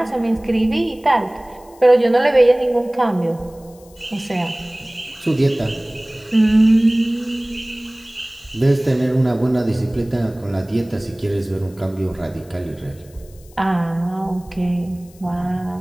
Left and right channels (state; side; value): noise; left; hiss, 27 dB below the sound